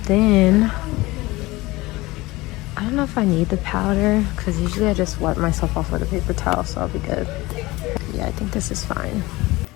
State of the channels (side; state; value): right; quieter; 20.7 dB